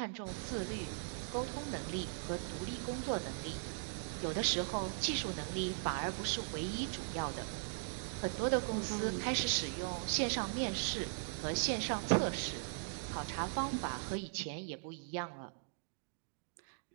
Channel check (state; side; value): silent; left; digital silence